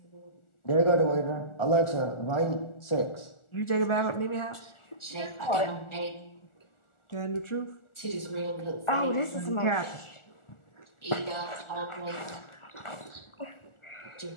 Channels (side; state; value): right; late; 1.4 ms